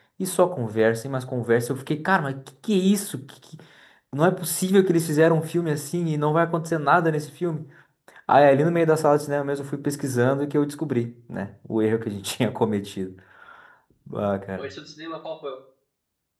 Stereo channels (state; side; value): identical; both; correlation 1.00